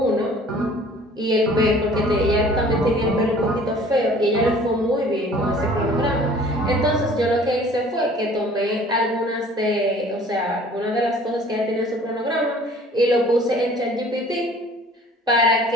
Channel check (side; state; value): both; normal; correlation 0.51